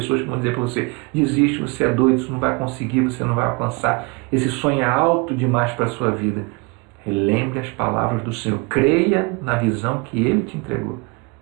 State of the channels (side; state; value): left; quieter; 28.8 dB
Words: que vão dizer para você, desiste, você é doido, isso não vai conseguir, você não vai alcançar, esse sonho é alto demais para a sua vida. Relembre as palavras do Senhor, creia na visão que Ele te entregou.